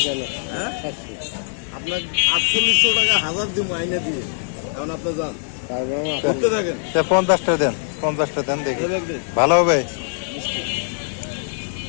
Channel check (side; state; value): right; silent; 64 dB below the other